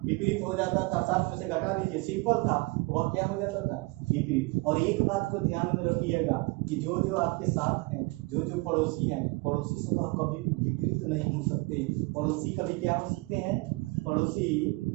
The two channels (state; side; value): quieter; left; 25.2 dB